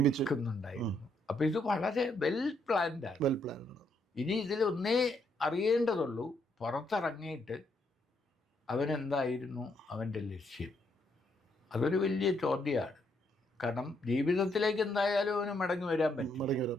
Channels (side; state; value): both; normal; correlation 0.75